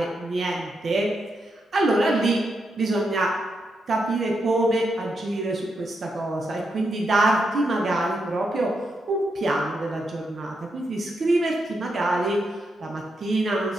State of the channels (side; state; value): both; normal; correlation 0.83